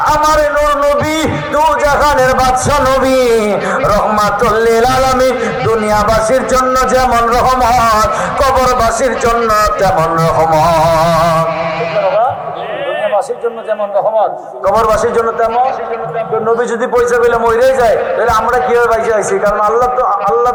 আমার নূর নবী দু জাহানের বাদশা নবী রহমাতুল লিল আলামিন, দুনিয়াবাসীর জন্য যেমন রহমত, কবরবাসীর জন্য তেমন রহমত। দুনিয়াবাসীর জন্য যেমন রহমত, কবরবাসীর জন্য তেমন। নবী যদি পয়সা পেলে মরেই যায়, তাহলে আমরা কিভাবে বাইসে আইছি? কারণ আল্লাহ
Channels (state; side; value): identical; both; correlation 1.00